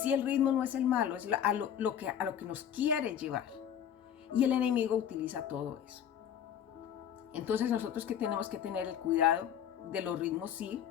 el ritmo no es el malo, es a lo que nos quiere llevar, y el enemigo utiliza todo eso. Entonces nosotros que tenemos que tener el cuidado de los ritmos. Sí,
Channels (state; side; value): quieter; right; 9.2 dB